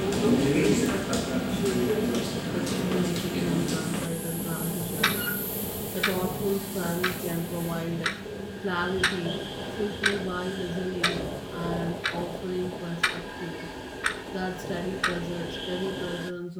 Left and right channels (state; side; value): identical; both; correlation 1.00